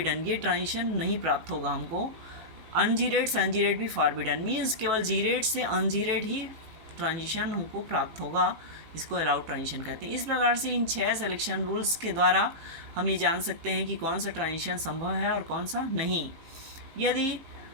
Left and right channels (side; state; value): left; late; 18 ms